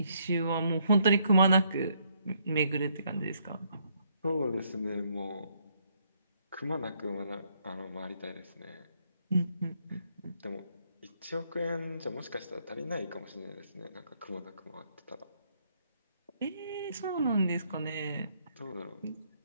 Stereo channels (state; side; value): inverted; both; correlation -0.71